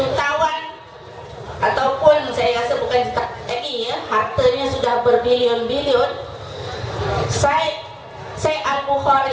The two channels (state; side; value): identical; both; correlation 1.00